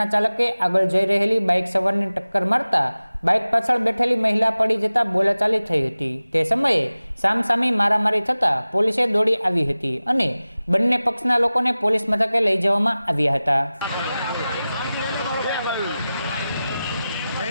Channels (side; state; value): both; inverted; correlation -0.96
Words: ચાલકે આગળ જઈ રહેલી બાઇક સવારને ટક્કર મારતા બાઇક પાછળ બેઠેલી મહિલા પડી જતા બોલાચાલી થઈ હતી। તે સમયે સામસામી મારામારી થતા પોલીસે દોડી આવી હતી અને બંને પક્ષના લોકોને પોલીસ મથકે લઈ જવામાં આવ્યા હતા।